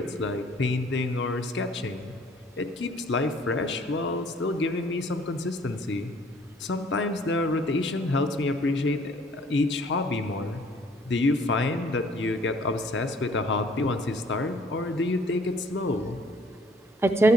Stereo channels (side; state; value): both; normal; correlation 0.57